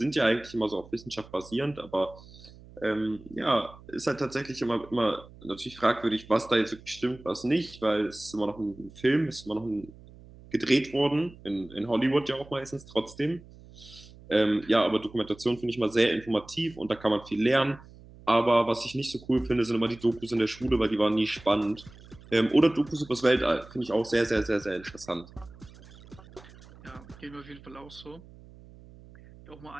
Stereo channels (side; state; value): right; noise; hum, 21 dB below the sound